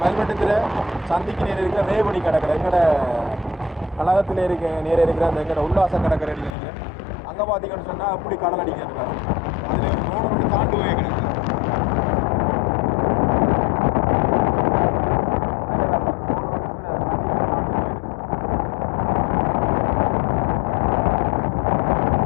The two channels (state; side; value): drops out; right; at 6.6 s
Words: மல்வட்டத்தில் சந்திக்கு நேரம் இருக்கிற ரேவடி கடற்கரை. எங்களோட கழகத்தில் நேரம் இருக்கிற அந்த எங்களோட உல்லாச கடற்கரை நினைக்கிறேன். அங்கே பார்த்தீங்கன்னு சொன்னால் அப்படி கடல் அடிக்கிறாங்க. அதில் ரோடு மட்டும் தாண்டு போய் கிடக்கு.